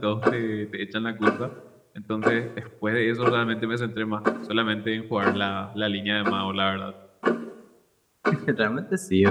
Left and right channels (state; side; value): identical; both; correlation 1.00